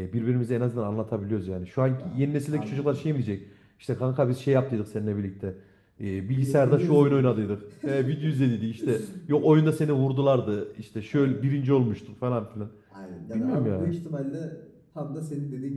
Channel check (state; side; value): identical; both; correlation 1.00